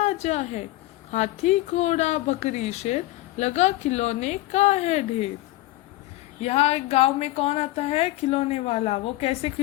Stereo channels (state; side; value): quieter; right; 17.7 dB